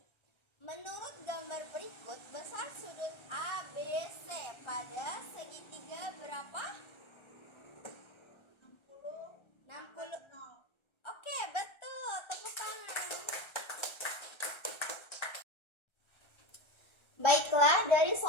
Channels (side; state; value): right; late; 1.3 ms